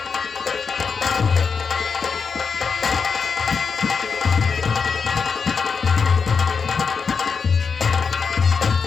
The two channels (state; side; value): quieter; right; 5.6 dB